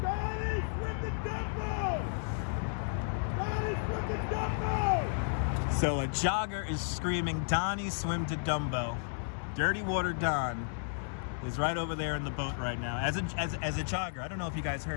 Donnie, swim the Dumbo! Donnie, swim the Dumbo! So a jogger is screaming, Donnie, swim to Dumbo. Dirty Water Don is right over there in the boat right now. As a jogger, I don't know if you guys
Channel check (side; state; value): right; silent; digital silence